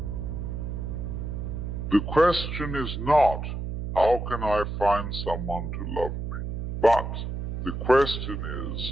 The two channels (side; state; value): right; noise; hum, 5 dB below the sound